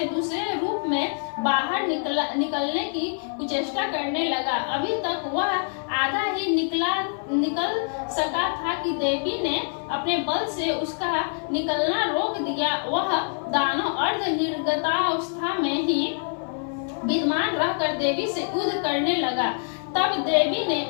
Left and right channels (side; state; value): right; silent; 62 dB below the other